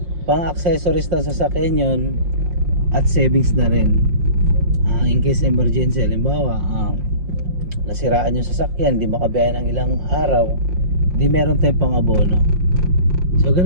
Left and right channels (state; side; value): late; left; 5.6 ms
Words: pang accessories ng sasakyan yun at savings na rin. In case emergency, halimbawa nasiraan yung sasakyan, di makabiyahe ng ilang araw, di meron tayong pang abono. So